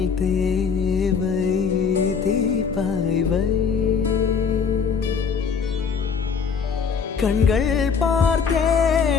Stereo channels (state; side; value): quieter; right; 6.0 dB